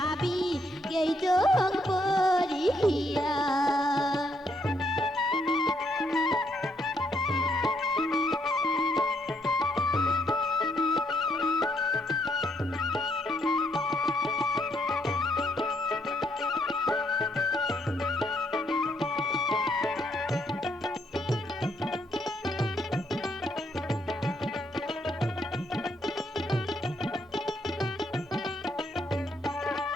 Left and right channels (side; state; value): both; normal; correlation 0.74